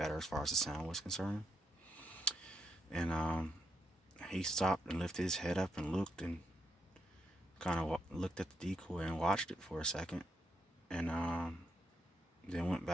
as far as the sound was concerned. And he stopped and lifted his head up and looked and kind of looked at the decoy and watched it for a second, and then went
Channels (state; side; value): normal; both; correlation 0.79